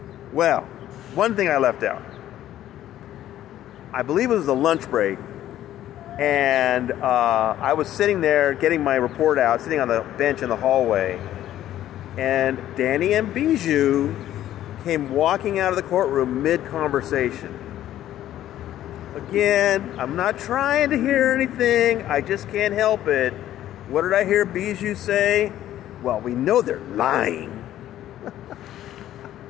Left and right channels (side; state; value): right; quieter; 12.6 dB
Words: Well, one thing I left out. I believe it was the lunch break. And I was sitting there getting my report out, sitting on the bench in the hallway. And Danny and Bijou came walking out of the courtroom mid-conversation. Again, I'm not trying to hear anything. I just can't help it. What did I hear Bijou say? Well, we know they're lying.